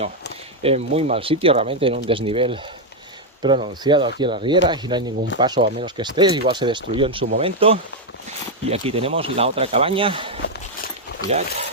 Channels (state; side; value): normal; both; correlation 0.01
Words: En muy mal sitio, realmente en un desnivel pronunciado aquí en la riera y no hay ningún paso a menos que esté, igual se destruyó en su momento. Y aquí tenemos la otra cabaña, mirad,